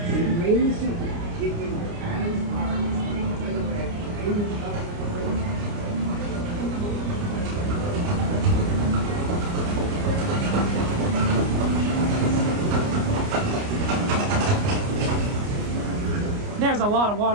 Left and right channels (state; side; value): late; left; 29 ms